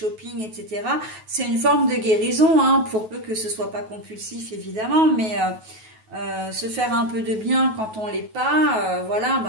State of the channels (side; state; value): left; late; 9.3 ms